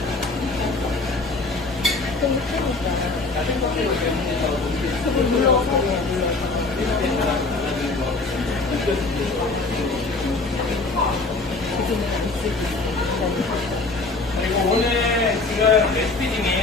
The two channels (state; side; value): quieter; right; 3.6 dB